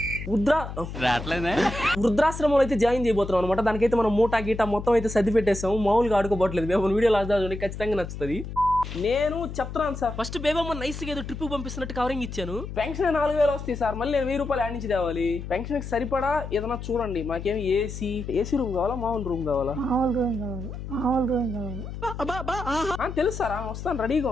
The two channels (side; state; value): left; noise; hum, 8 dB below the sound